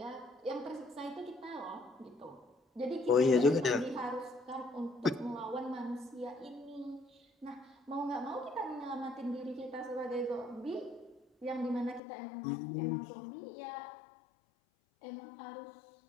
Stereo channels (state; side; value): drops out; right; at 12.0 s